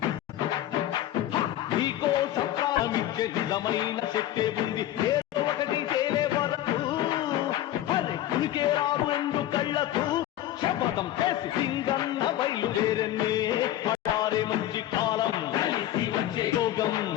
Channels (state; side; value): quieter; right; 13.1 dB